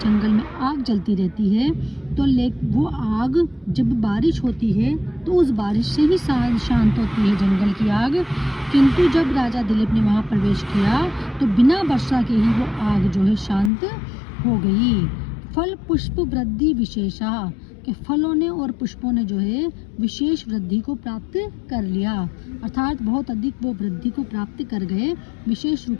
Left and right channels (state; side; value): drops out; right; at 13.7 s